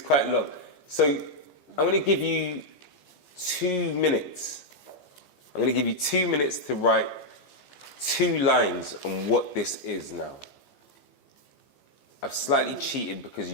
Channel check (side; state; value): right; late; 15 ms